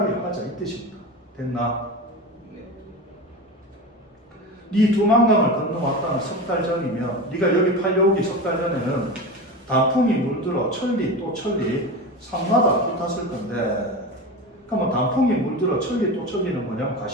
하자 이 뜻입니다. 됐나? 네 두만강을 건너왔다는 석 달 전이면 네가 여기 팔려오기 석 달 전에는 단풍이 물들어 천리 또 천리 산마다 붙었을 건데, 그러면 단풍이 물들어 천리 또 천리는 뭐냐면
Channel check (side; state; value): both; normal; correlation 0.26